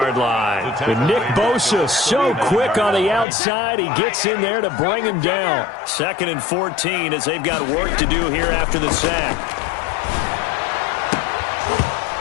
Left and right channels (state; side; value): drops out; right; at 3.2 s